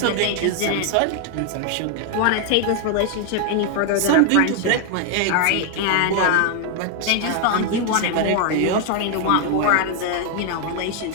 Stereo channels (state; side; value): different; both; correlation 0.00